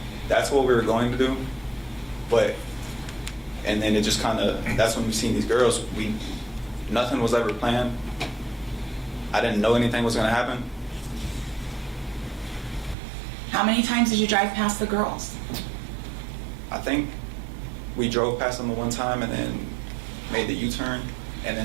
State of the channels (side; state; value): left; drops out; at 13.0 s